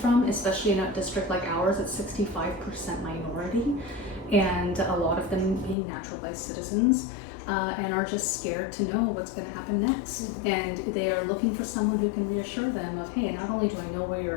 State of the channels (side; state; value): right; drops out; at 5.8 s